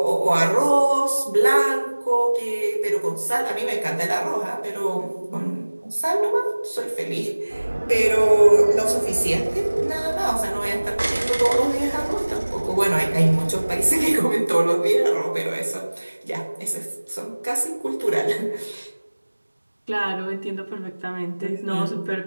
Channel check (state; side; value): inverted; both; correlation -1.00